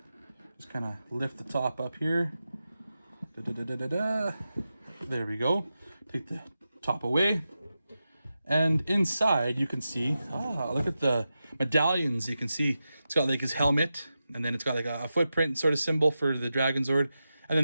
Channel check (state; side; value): inverted; both; correlation -0.91